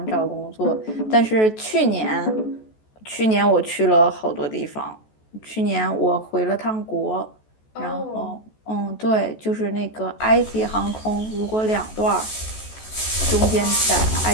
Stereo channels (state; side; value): late; right; 14 ms